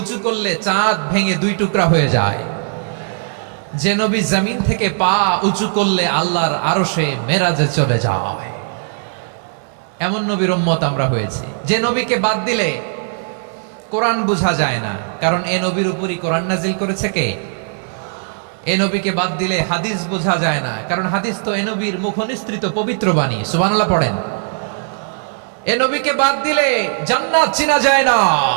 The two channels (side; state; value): left; silent; digital silence